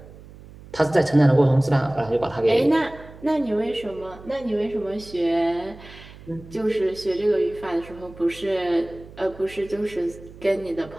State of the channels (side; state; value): right; noise; hum, 19 dB below the sound